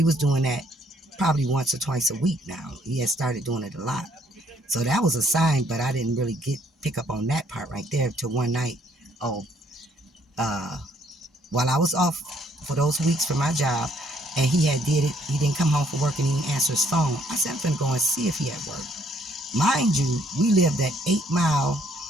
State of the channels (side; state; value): both; normal; correlation 0.66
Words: was doing that probably once or twice a week now. He had started doing it a lot. So that was a sign, but I didn't really pick up on that part right there till one night. While I was off for those weeks for my job, and he didn't come home from work and he didn't answer his phone. I said, I'm finna go and see if he at work. Mind you, we lived at 8 Mile